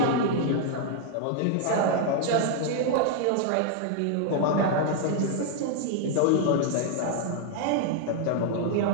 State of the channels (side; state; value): both; different; correlation 0.00